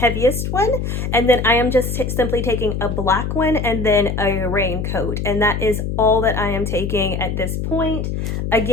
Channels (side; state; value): left; noise; hum, 3 dB below the sound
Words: one, and then I am just simply taking a black one and then a raincoat, and that is all that I am taking at this point.